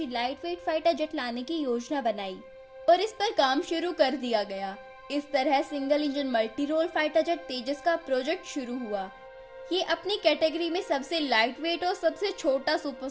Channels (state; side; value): identical; both; correlation 1.00